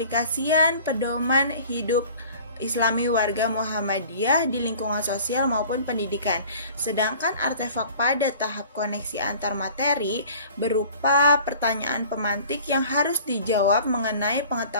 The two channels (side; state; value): both; inverted; correlation -0.47